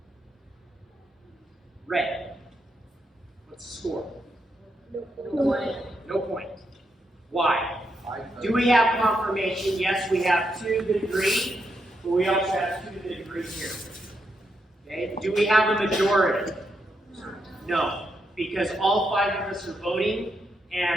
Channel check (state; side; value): normal; both; correlation 0.81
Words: Red. What's the score? No point. Why? Do we have confirmation? Yes, we have 2 that agree, but we also have 2 that agree here. Okay? Do we have a majority? No, because all 5 of us are voting,